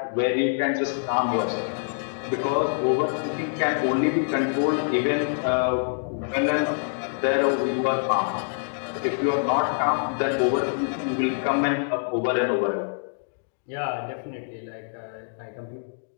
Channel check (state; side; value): silent; right; digital silence